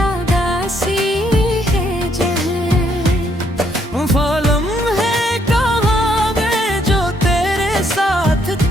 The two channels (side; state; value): both; normal; correlation 0.71